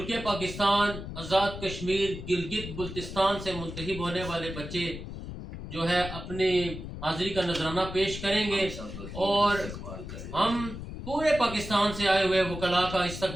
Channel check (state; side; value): noise; left; rumble, 9 dB below the sound